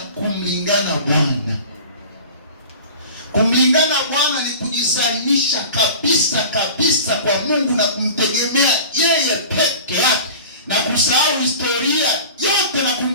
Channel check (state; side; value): inverted; both; correlation -0.38